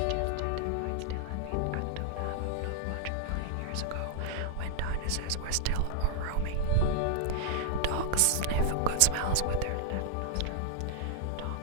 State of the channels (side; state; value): both; different; correlation -0.01